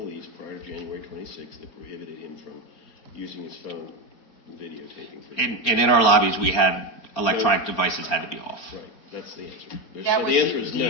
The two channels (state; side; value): late; right; 4.3 ms